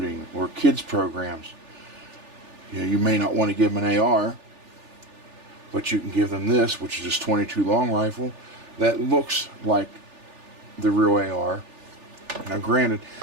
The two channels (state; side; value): late; left; 3.4 ms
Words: or kids programs, you may not want to give them an AR, but you can give them this, which is just 22 long rifle that looks like the real AR. Now, granted,